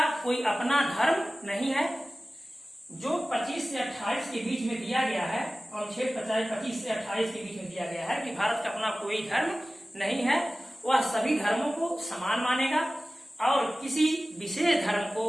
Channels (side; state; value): both; normal; correlation 0.97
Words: कोई अपना धर्म नहीं है। जो 25 से 28 के बीच में दिया गया है, अनुच्छेद 25 से 28 के बीच में दिया गया है कि भारत का अपना कोई धर्म नहीं है, वह सभी धर्मों को समान मानेगा और किसी विशेष धर्म को